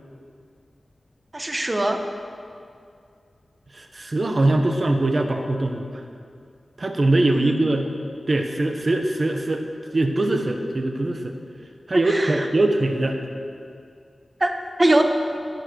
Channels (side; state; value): both; normal; correlation 0.97